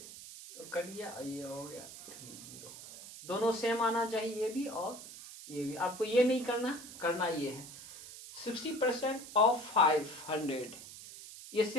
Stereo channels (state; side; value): noise; right; hiss, 14 dB below the sound